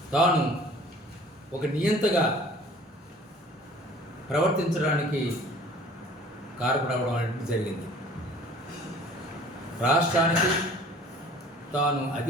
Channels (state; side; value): normal; both; correlation 0.50